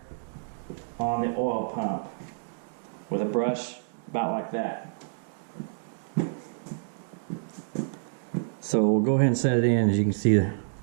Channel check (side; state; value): left; silent; digital silence